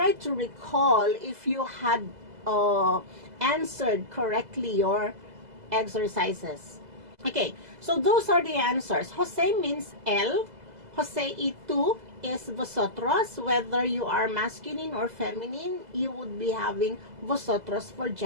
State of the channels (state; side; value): late; left; 2.0 ms